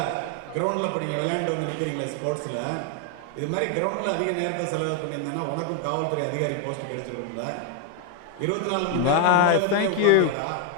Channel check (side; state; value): both; different; correlation 0.01